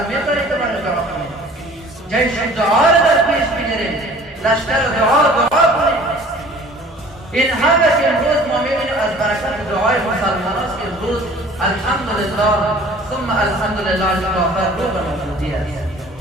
می‌توانیم که برای دعا کنیم. جیش دعا را در پیش بگیریم، لشکر دعا کنیم. این همه که امروز ما می‌بینیم از برکت دعای مسلمان است که امروز الحمدلله ثم الحمدلله کافر رو به موجودی است.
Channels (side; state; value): both; normal; correlation 0.49